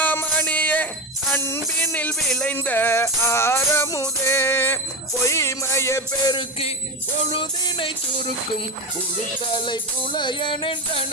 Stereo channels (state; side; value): normal; both; correlation 0.17